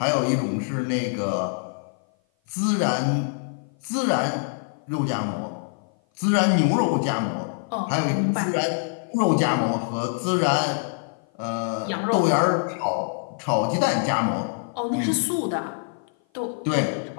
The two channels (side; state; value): right; silent; 55 dB below the other